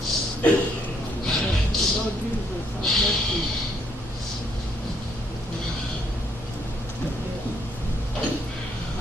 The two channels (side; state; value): both; normal; correlation 0.70